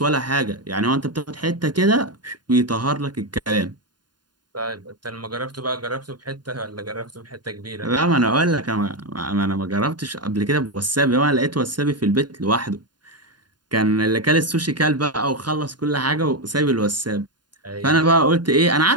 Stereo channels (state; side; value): late; left; 0.70 ms